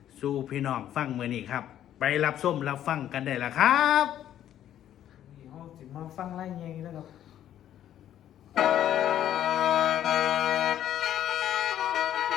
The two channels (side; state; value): right; quieter; 11.2 dB